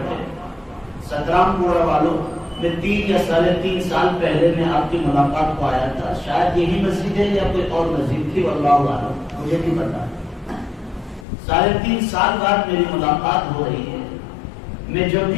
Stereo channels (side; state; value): right; drops out; at 11.2 s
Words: 17 پورا والوں میں 3 یا 3.5 سال پہلے میں آپ کی ملاقات کو آیا تھا، شاید یہی مسجد ہے یا کوئی اور مسجد تھی، واللہ اعلم، مجھے نہیں پتا۔ 3.5 سال بعد میری ملاقات ہو رہی ہے۔ میں جب